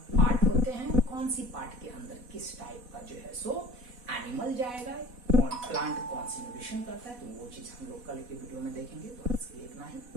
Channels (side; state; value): left; late; 4.1 ms